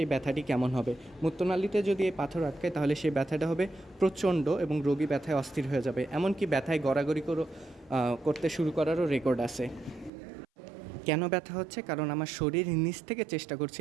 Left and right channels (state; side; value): drops out; left; at 10.1 s